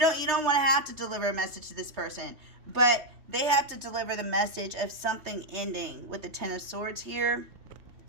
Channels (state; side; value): late; left; 3.3 ms